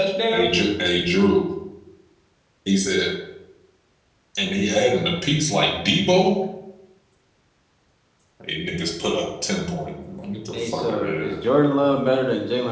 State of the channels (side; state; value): both; identical; correlation 1.00